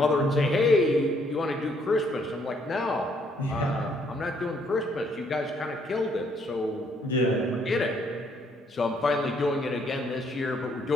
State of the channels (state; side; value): normal; both; correlation 0.68